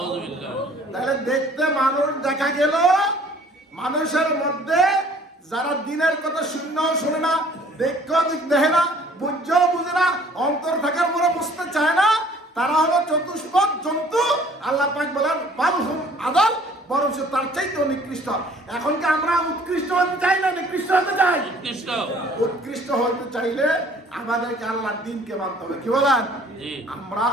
তাহলে দেখতে মানুষ দেখা গেল, মানুষের মধ্যে যারা দিনের কথা শুনলেও শোনে না, দেখেও দেখে না, বুঝেও বুঝে না, অন্তর থাকার পরে বুঝতে চায় না, তারা হলো চতুষ্পদ জন্তু। আল্লাহ পাক বলেন বাল হুম আদাল, বরং তার চাইতেও নিকৃষ্ট। এখন কি আমরা উৎকৃষ্ট হতে চাই না নিকৃষ্ট হতে চাই? উৎকৃষ্ট উৎকৃষ্ট হতে চাইলে আমাদেরকে আল্লাহর দিনকে মানতে হবে। কি বলেন? জি আমরা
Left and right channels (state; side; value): normal; both; correlation 0.55